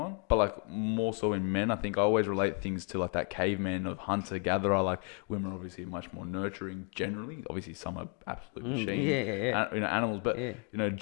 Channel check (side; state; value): right; quieter; 38.6 dB